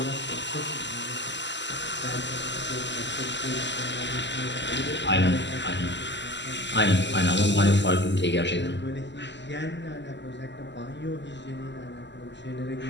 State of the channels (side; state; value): right; late; 0.52 ms